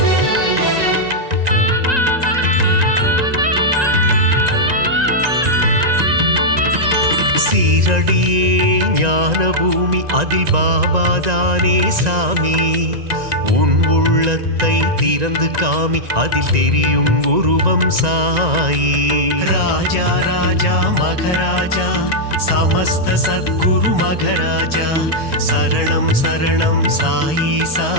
சீரடியே ஞான பூமி அதில் பாபாதானே சாமி உன் உள்ளத்தை திறந்து காமி அதில் தெரியும் உருவம் சாயி ராஜா ராஜா மகராஜா சமஸ்த சத்குரு மகராஜா சரணம் சரணம் சாயீசா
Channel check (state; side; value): late; left; 1.9 ms